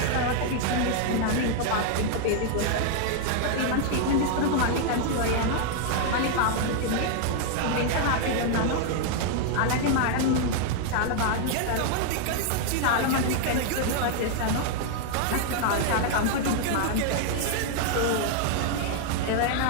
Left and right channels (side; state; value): both; different; correlation 0.00